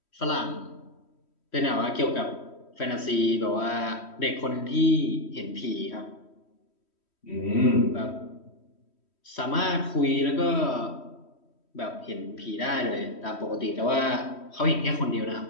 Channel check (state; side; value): late; right; 3.1 ms